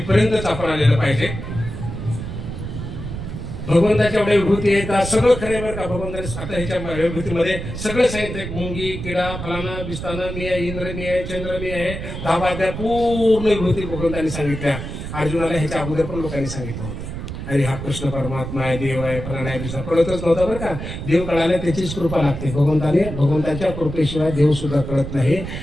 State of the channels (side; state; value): right; noise; rumble, 7 dB below the sound